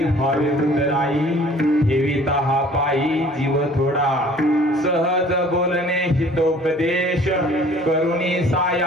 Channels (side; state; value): both; normal; correlation 0.52